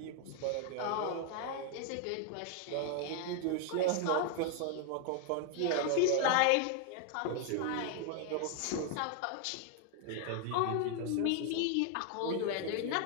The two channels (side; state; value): both; different; correlation 0.00